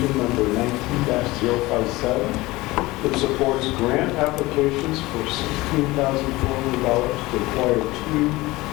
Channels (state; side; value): quieter; right; 20.2 dB